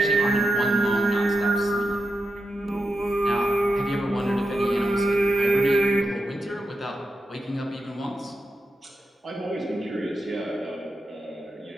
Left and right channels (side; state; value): both; normal; correlation 0.87